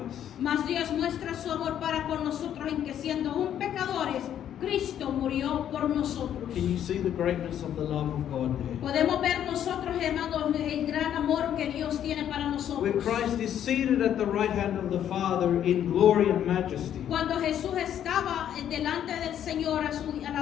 Dios muestra su amor para con nosotros en que siendo aún pecadores, Cristo murió por nosotros. Can you see the greatness of the love of God there? Podemos ver nosotros, hermanos, el gran amor que Dios tiene para Where nosotros. Christ is seated at the right hand of the Father in glory and majesty. Cuando Jesús estaba delante del Señor a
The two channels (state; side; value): quieter; right; 10.2 dB